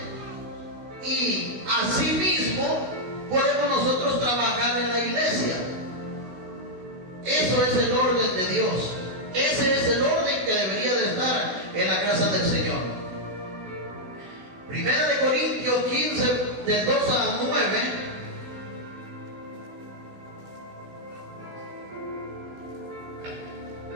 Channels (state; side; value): late; left; 16 ms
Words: Y asimismo podemos nosotros trabajar en la iglesia. Eso es el orden de Dios. Ese es el orden que debería de estar en la casa del Señor. Primera de Corintios 15, del 2 al 9.